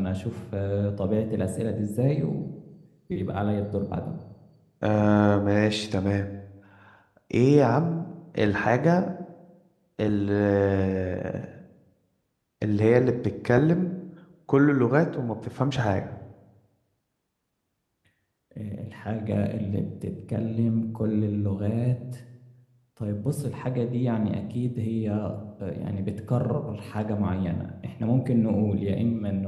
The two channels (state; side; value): identical; both; correlation 1.00